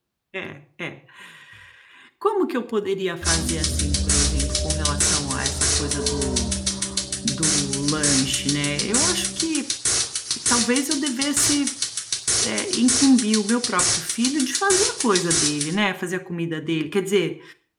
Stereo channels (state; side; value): identical; both; correlation 1.00